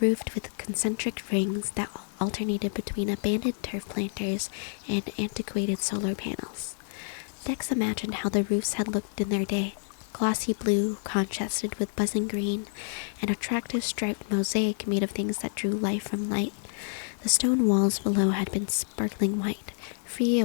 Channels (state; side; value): silent; right; 59 dB below the other